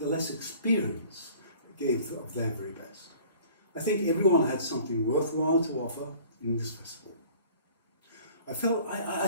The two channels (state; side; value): inverted; both; correlation -0.49